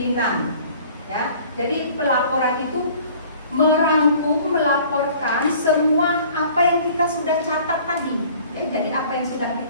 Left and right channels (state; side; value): inverted; both; correlation -0.51